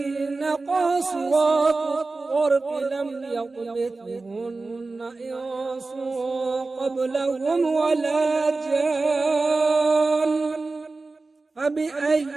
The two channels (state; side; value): quieter; left; 3.6 dB